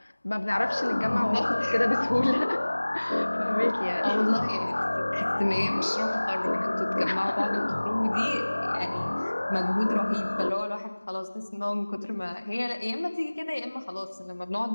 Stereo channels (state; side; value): inverted; both; correlation -1.00